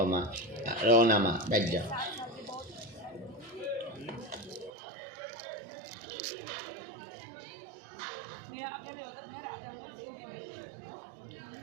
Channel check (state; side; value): drops out; left; at 4.7 s